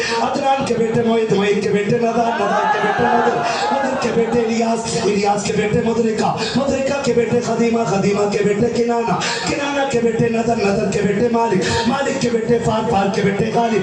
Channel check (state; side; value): identical; both; correlation 1.00